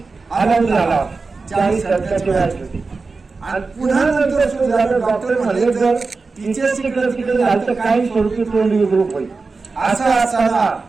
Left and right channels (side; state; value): left; quieter; 4.1 dB